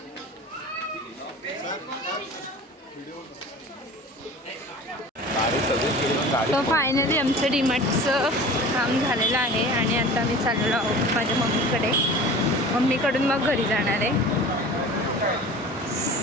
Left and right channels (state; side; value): normal; both; correlation 0.39